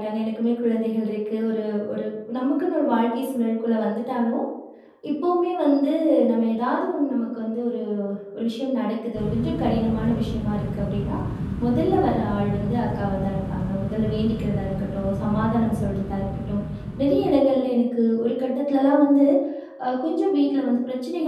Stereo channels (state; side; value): identical; both; correlation 1.00